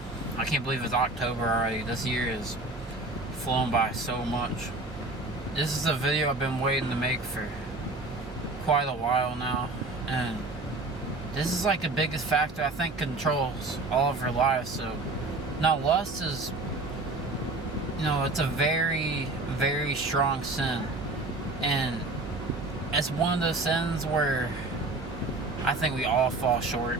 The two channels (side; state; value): left; quieter; 3.1 dB